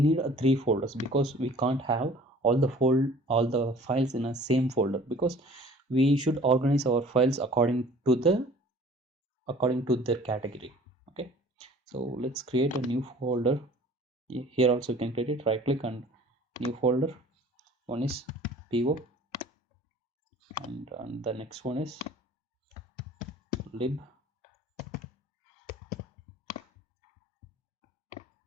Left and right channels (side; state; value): both; normal; correlation 0.49